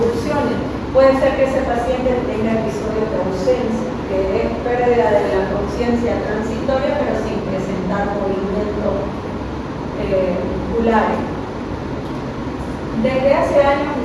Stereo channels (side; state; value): both; identical; correlation 1.00